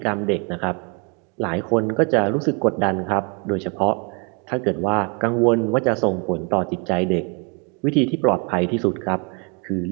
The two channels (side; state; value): left; quieter; 32.8 dB